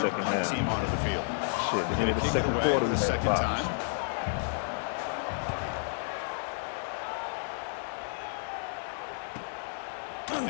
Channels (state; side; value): silent; right; digital silence